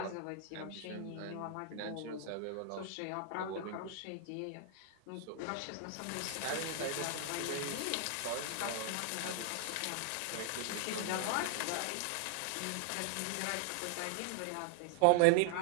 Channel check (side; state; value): both; different; correlation 0.00